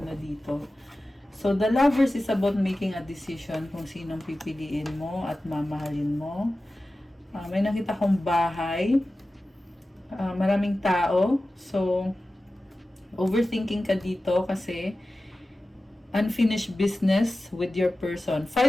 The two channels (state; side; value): normal; both; correlation 0.95